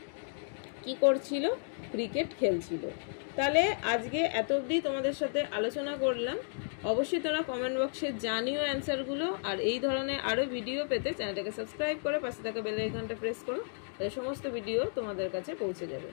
কি করছিল, ক্রিকেট খেলছিল। তাহলে আজকে এত অবধি তোমাদের সাথে আলোচনা করলাম, অবশ্যই তোমরা কমেন্ট বক্সে জানিও অ্যান্সারগুলো, আর এই ধরনের আরও ভিডিও পেতে চ্যানেলটাকে সাবস্ক্রাইব করে পাশে থাকা বেল আইকনটা প্রেস করো, তাহলে সমস্ত ভিডিও তোমাদের কাছে পৌঁছে যাবে।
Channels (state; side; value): silent; right; digital silence